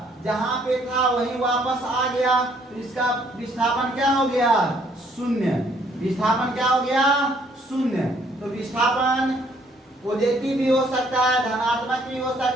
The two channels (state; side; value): normal; both; correlation 0.65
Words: जहां पे था वहीं वापस आ गया, तो इसका विस्थापन क्या हो गया, शून्य। विस्थापन क्या हो गया, शून्य। तो विस्थापन पॉजिटिव भी हो सकता है, धनात्मक भी हो